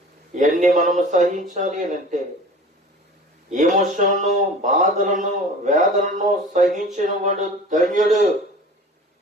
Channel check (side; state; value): both; normal; correlation 0.41